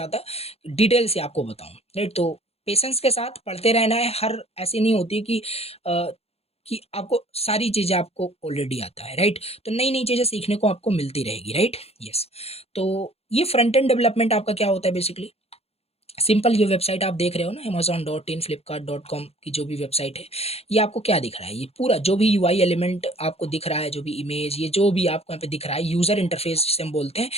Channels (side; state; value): right; late; 0.29 ms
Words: डिटेल से आपको बताऊँ, राइट। तो पेशेंस के साथ पढ़ते रहना है। हर ऐसी नहीं होती कि आपको सारी चीज़ें आपको ऑलरेडी आता है, राइट। तो नई नई चीज़ें सीखने को आपको मिलती रहेगी, राइट। यस। तो ये फ्रंट एंड डेवलपमेंट आपका क्या होता है बेसिकली, सिंपल ये वेबसाइट आप देख रहे हो ना amazon.in flipkart.com की जो भी वेबसाइट है, ये आपको क्या दिख रहा है, ये पूरा जो भी यूआई एलिमेंट आपको दिख रहा है, जो भी इमेज, ये जो भी आपको यहाँ पे दिख रहा है, यूजर इंटरफेस जिसे हम बोलते हैं,